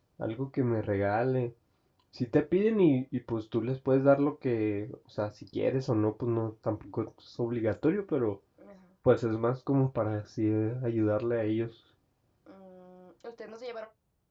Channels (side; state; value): both; identical; correlation 1.00